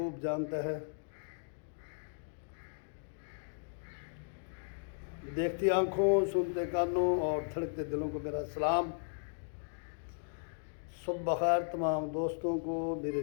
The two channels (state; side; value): silent; right; digital silence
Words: جانتا ہے، دیکھتی آنکھوں، سنتے کانوں اور دھڑکتے دلوں کو میرا سلام۔ صبح بخیر تمام دوستوں کو، میرے